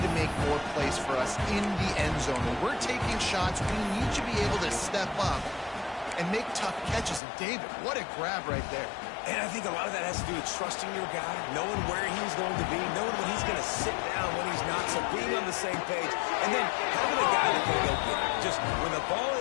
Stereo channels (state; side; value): drops out; right; at 7.2 s